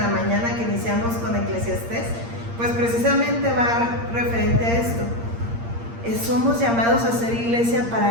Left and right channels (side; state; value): left; late; 8.6 ms